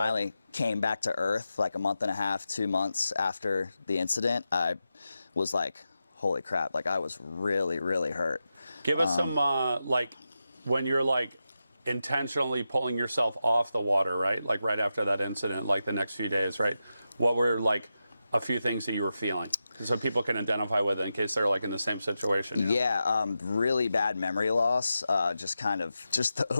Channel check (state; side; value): inverted; both; correlation -0.89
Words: came back to earth, like a month and a half, 2 months after the incident, I was like, holy crap, like I was really, really hurt. Give us some, like, when you're like intentionally pulling yourself off the water, right? Like right after that incident, like the next few days, right? What were like a few things that you were feeling? So people can identify with it in case they're like in the same situation. You know? Yeah, really bad memory loss. Just the